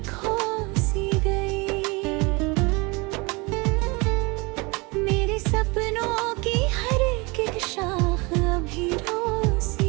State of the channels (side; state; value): left; quieter; 26.8 dB